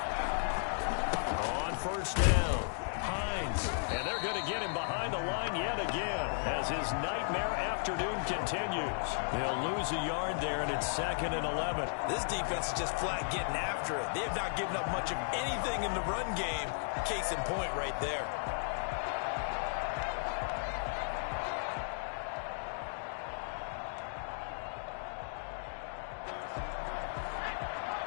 On first down, Hines. And they're going to get him behind the line yet again as his nightmare afternoon continues. They'll lose a yard there, and it's second and 11. This defense is just flat getting after it. They have not given up much of anything in the run game. Case in point right there.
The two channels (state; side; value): silent; right; digital silence